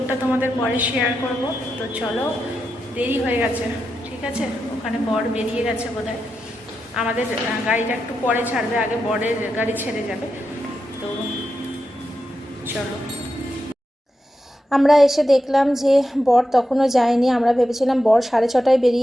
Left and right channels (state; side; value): normal; both; correlation 0.88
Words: তোমাদের পরে শেয়ার করব। তো চলো, দেরি হয়ে গেছে, ঠিক আছে? ওখানে বর বেরিয়ে গেছে বোধহয়। আমাদের গাড়িটা একটু পরে ছাড়বে, আগে বরের গাড়ি ছেড়ে যাবে। তো চলো। আমরা এসে দেখলাম যে বর তখনও যায়নি। আমরা ভেবেছিলাম বর 6:30টায়